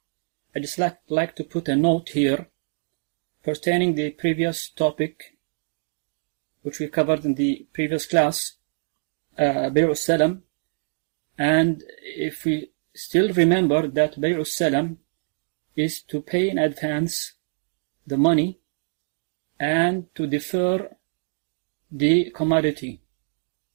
I just like to put a note here pertaining the previous topic which we covered in the previous class, Bay' al-Salam. And if we still remember that Bay' al-Salam is to pay in advance the money and to defer the commodity.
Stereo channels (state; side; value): silent; left; digital silence